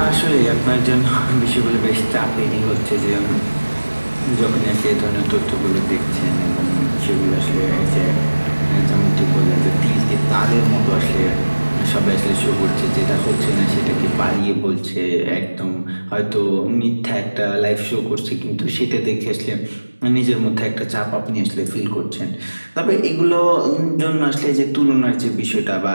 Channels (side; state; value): both; inverted; correlation -1.00